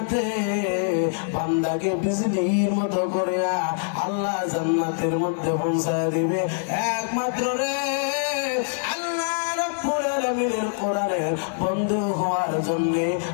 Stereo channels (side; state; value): right; silent; digital silence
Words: বান্দাকে বিজলির মতো করে আল্লাহ জান্নাতের মধ্যে পৌঁছায় দিবে একমাত্র রে আল্লাহ রাব্বুল আলামিনের কোরআনের বন্ধু হওয়ার জন্য